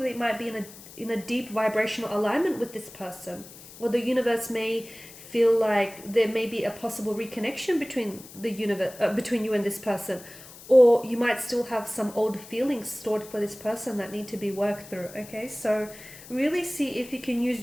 might be in a deep vibrational alignment with this person, or the universe may feel like there may be a possible reconnection between between you and this person, or you might still have some old feelings stored for this person that need to be worked through. Okay, so really see if you can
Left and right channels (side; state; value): left; noise; hiss, 18 dB below the sound